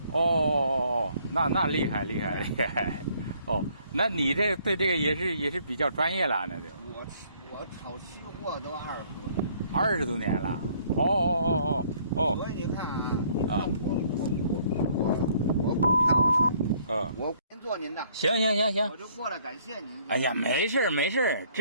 哦，那厉害。哦，那你这对这个也是比较专业了，那就。我炒期货都20多年。20多年了。哦。所以你看啊，你看我股票呢，我先做您的。行。我就过来感谢您。哎呀，没事，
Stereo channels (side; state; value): both; inverted; correlation -0.63